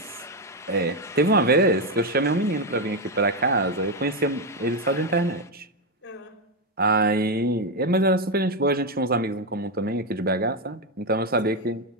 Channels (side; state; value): both; normal; correlation 0.07